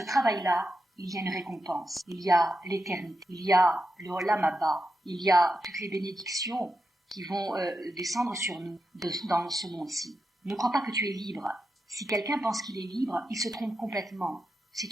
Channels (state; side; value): normal; both; correlation 0.87